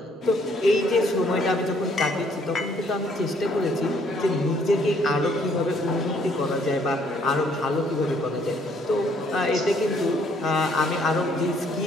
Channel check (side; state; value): both; normal; correlation 0.65